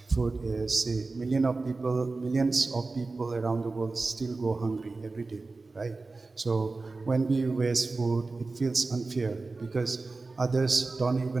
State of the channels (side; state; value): left; quieter; 3.6 dB